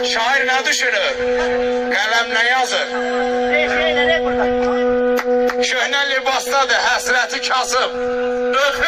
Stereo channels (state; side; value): identical; both; correlation 1.00